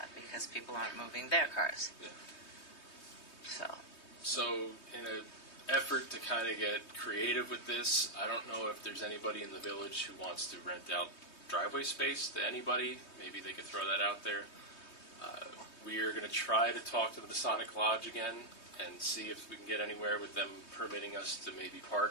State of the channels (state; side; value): late; right; 3.2 ms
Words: because people aren't moving their cars. Yeah. So In an effort to kind of get creative with this, I don't know if there's anybody in the village who wants to rent out driveway space to anybody. Maybe they could throw that out there. We are going to try to talk to the Masonic Lodge again and see if we can get anywhere with them permitting us to maybe